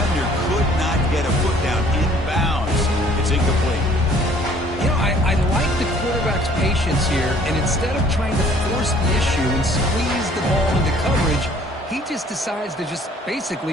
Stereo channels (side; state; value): both; normal; correlation 0.57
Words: could not get a foot down inbounds. It's incomplete. You know, I like the quarterback's patience here, and instead of trying to force the issue and squeeze the ball into coverage, he just decides to just